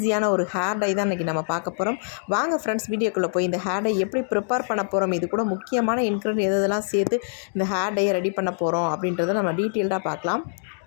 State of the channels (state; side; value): silent; right; digital silence